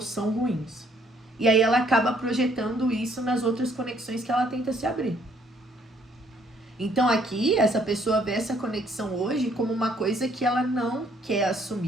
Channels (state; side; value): normal; both; correlation 0.65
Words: ruins. E aí ela acaba projetando isso nas outras conexões que ela tenta se abrir. Então aqui, essa pessoa vê essa conexão hoje como uma coisa que ela não quer